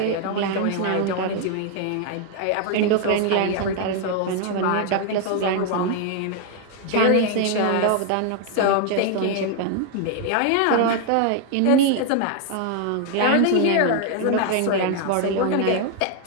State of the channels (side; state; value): both; different; correlation 0.00